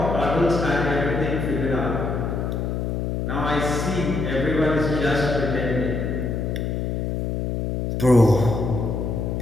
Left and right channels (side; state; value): left; noise; hum, 1 dB below the sound